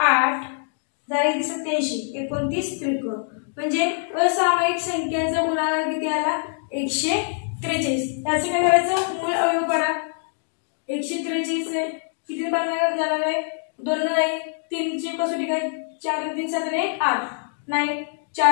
झाली 87. 29 त्रिक म्हणजे असामायिक संख्यांचा गुणाकार किती आला? 143. त्याचं काय करायचं? मूळ अवयव पडा. 143 आहे किती भागाकार जाणार आहे? 2 नाही 3 ची कसोटी काय? 4 3 7 आणि 8 नाही.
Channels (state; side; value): silent; right; 63 dB below the other